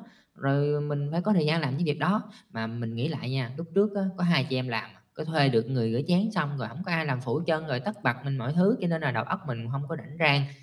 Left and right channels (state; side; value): identical; both; correlation 1.00